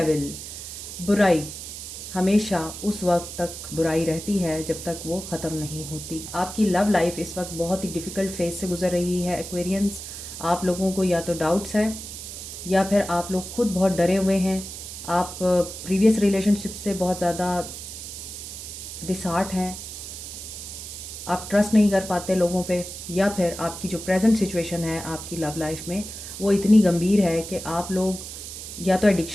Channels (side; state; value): right; noise; hiss, 10 dB below the sound